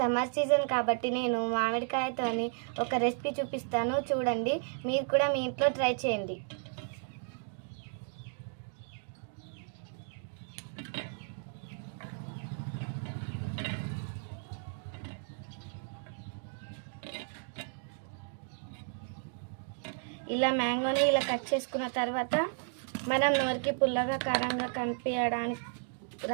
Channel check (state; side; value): silent; left; 55 dB below the other